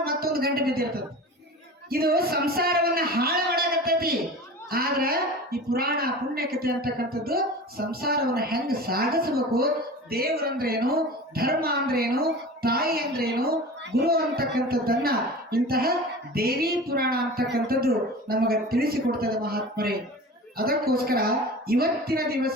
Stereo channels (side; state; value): both; normal; correlation 0.35